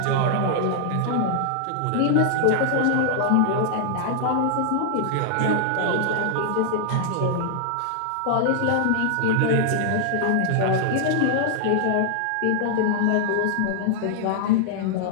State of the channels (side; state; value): both; different; correlation 0.00